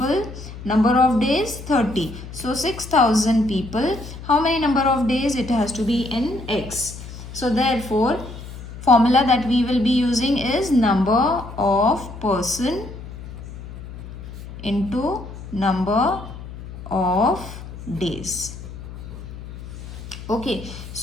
number of days 30. So 6,000 people, how many number of days? It has to be in X. So therefore, formula that we will be using is number of person into number of days. Okay,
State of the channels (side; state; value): left; noise; hum, 12 dB below the sound